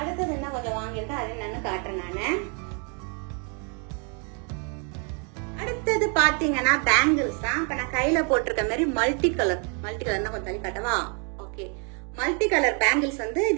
என்ன கொஞ்சம் வாங்கியிருக்கேன் அது என்னன்னு காட்டுறேன் நானு. அடுத்தது பாத்தீங்கன்னா பேங்கிள்ஸ் தான். இப்ப நான் கையில போட்டிருக்க மாதிரி மல்டி கலர் கொஞ்சம் தள்ளி காட்டவா? ஓகே, மல்டி கலர் பேங்கிள்ஸ் வந்து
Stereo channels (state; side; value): quieter; left; 37.7 dB